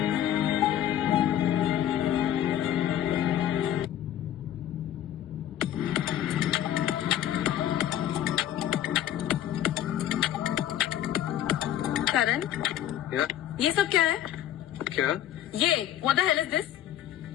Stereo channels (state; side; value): quieter; right; 11.5 dB